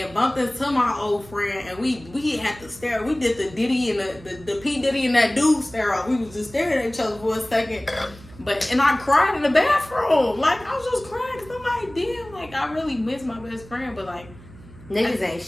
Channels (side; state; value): right; noise; hum, 20 dB below the sound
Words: bumped into my old friend, and we had to stare. We did the Diddy and the P. Diddy and that dude stare off. We was just staring at each other for a second. And I cried in the bathroom. Like, I was just crying because I'm like, damn, like, I really miss my best friend. But, like, niggas ain't